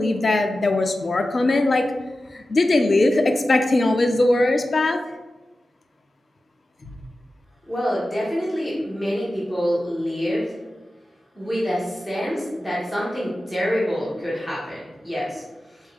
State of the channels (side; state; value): both; normal; correlation 0.94